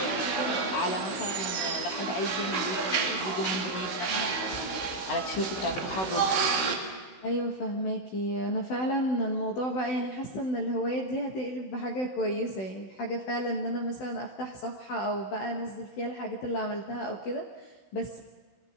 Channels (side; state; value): right; late; 16 ms